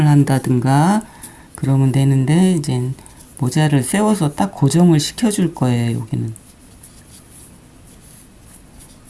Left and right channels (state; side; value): identical; both; correlation 1.00